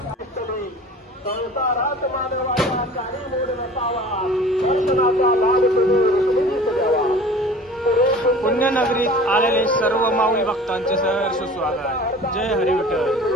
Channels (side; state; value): both; normal; correlation 0.43